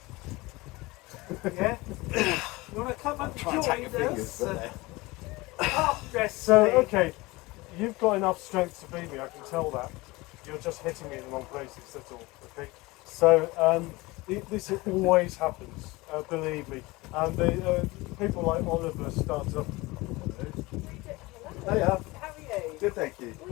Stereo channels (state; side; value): quieter; right; 22.0 dB